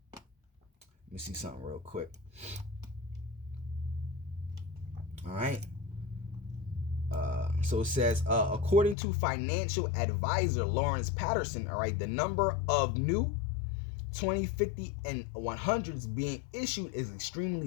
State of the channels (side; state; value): right; drops out; at 9.0 s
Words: Let me see something real quick. All right. So it says, according to financial advisor Lawrence Patterson, all right, the number of new 20, 50, and 100s being issued is